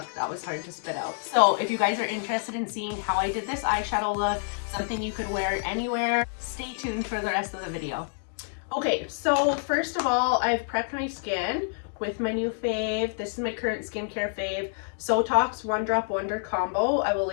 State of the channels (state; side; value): silent; right; digital silence